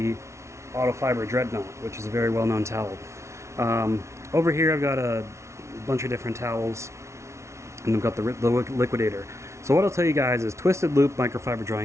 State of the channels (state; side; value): late; left; 0.13 ms